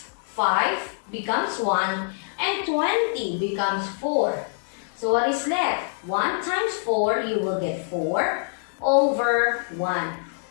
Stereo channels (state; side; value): silent; right; 62 dB below the other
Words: 5 becomes 1 and 20 becomes 4. So what is left? 1 times 4, you will get 4 over 1.